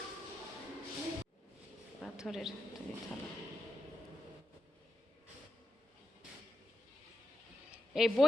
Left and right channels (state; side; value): normal; both; correlation 0.87